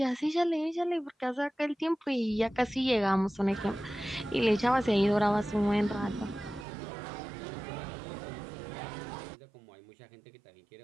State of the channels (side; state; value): left; drops out; at 6.7 s